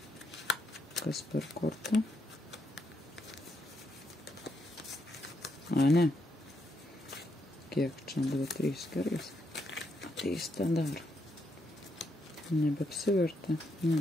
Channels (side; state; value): both; normal; correlation 0.78